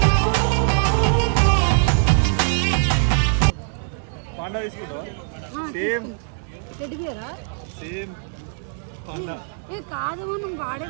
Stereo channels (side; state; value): left; silent; digital silence